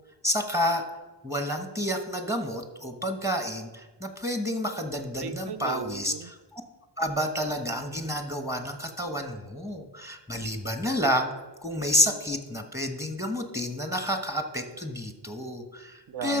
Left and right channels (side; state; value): both; normal; correlation 0.33